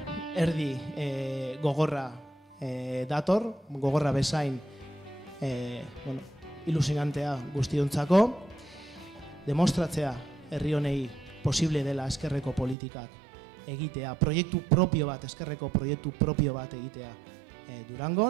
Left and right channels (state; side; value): drops out; left; at 12.8 s